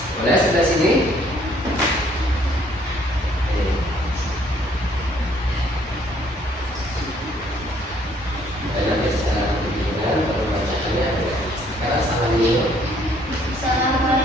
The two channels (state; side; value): normal; both; correlation 0.63